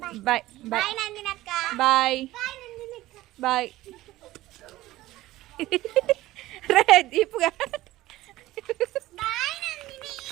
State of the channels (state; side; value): quieter; left; 16.7 dB